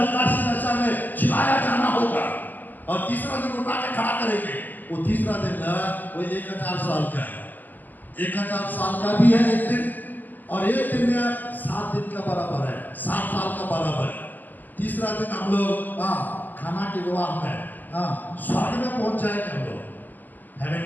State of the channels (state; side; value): late; right; 0.085 ms